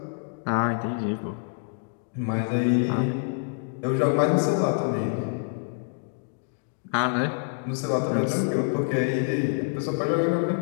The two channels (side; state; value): right; silent; digital silence